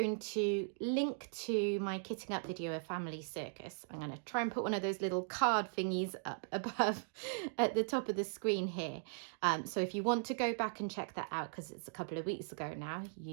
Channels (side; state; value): left; silent; digital silence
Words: to link to my kitting up video of Family Circus. I'm going to try and put one of those little card thingies up above at the top of the screen here. So if you want to go back and check that out, because it's a couple of weeks ago now,